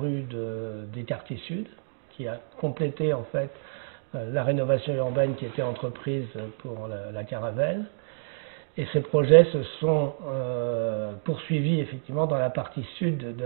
des quartiers sud, qui a complété en fait la rénovation urbaine qui était entreprise pour la Caravelle. Et ces projets se sont poursuivis effectivement dans la partie sud de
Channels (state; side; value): silent; left; digital silence